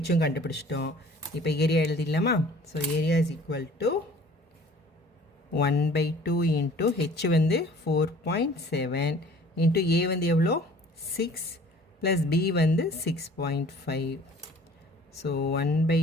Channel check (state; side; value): normal; both; correlation 0.50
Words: கண்டுபிடிச்சிட்டோம். இப்போ ஏரியா எழுதிடலாமா? So area is equal to 1/2 into h வந்து 4.7 into a வந்து எவ்வளோ 6 plus b வந்து 6.5. So